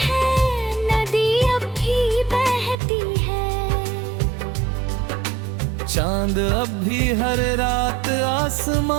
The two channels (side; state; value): left; drops out; at 2.8 s